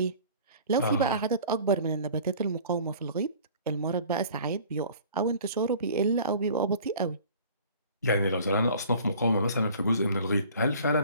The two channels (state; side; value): inverted; both; correlation -0.47